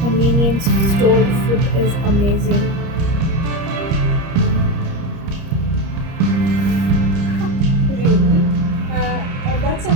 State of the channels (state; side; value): late; left; 30 ms